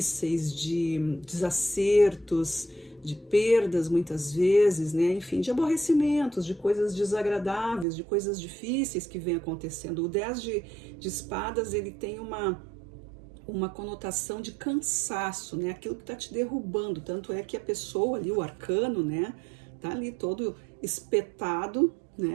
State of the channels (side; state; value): left; drops out; at 7.9 s